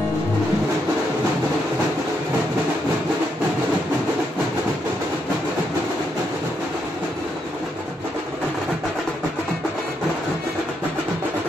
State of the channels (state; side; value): normal; both; correlation 0.78